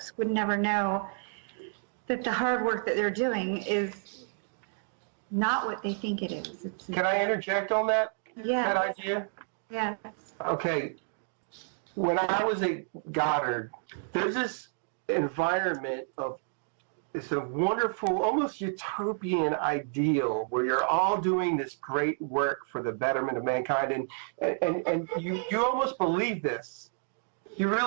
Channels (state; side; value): silent; left; digital silence